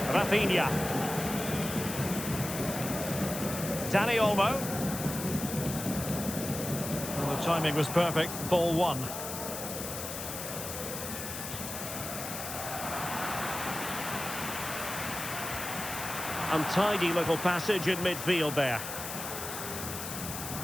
Rafinha. Dani Olmo. Well, the timing was perfect. Ball one. Untidy little passage in midfield there.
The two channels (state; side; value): noise; left; hiss, 7 dB below the sound